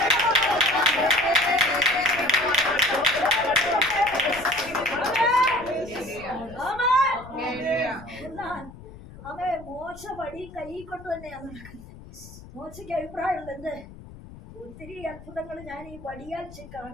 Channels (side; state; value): left; noise; rumble, 17 dB below the sound